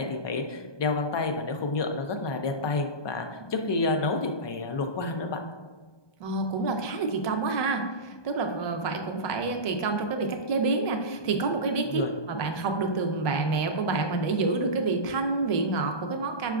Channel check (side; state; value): right; late; 1.2 ms